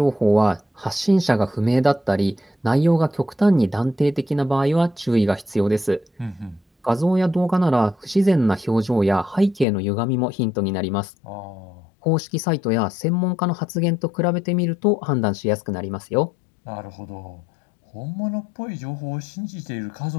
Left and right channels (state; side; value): drops out; right; at 9.7 s